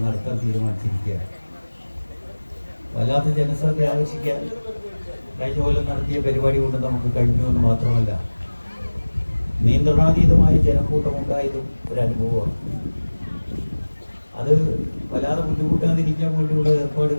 നടത്താൻ തീരുമാനിച്ചിരിക്കുകയാണ്. വല്ലാത്ത ജനശ്രദ്ധ ആകർഷിക്കാൻ കഴിഞ്ഞ കൊല്ലം നടത്തിയ പരിപാടി കൊണ്ട് നമുക്ക് കഴിഞ്ഞു എന്ന് മാത്രമല്ല, നിയന്ത്രണാതീതമായ ജനക്കൂട്ടമുണ്ടായതും ഒരു അനുഭവമാണ്. അത് വല്ലാതെ ബുദ്ധിമുട്ടാതിരിക്കാൻ വേണ്ടിയുള്ള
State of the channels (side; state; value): both; inverted; correlation -1.00